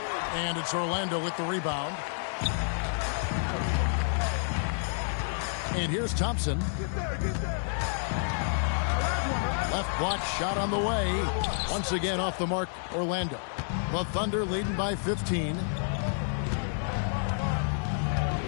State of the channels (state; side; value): silent; right; 58 dB below the other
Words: And it's Orlando with the rebound. And here's Thompson. Left block shot on the way. Once again off the mark, Orlando. The Thunder leading by 15.